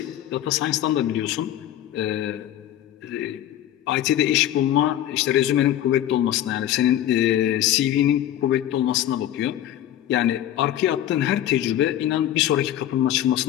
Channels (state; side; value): quieter; right; 12.0 dB